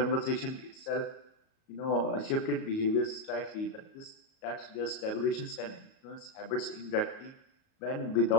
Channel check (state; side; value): late; right; 38 ms